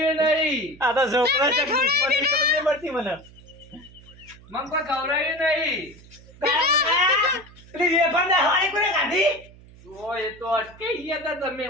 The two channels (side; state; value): right; noise; hum, 22 dB below the sound